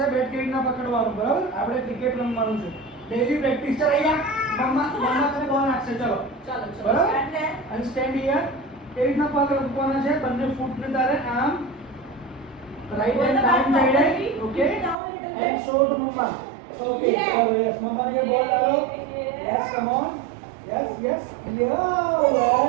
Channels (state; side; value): drops out; left; at 15.0 s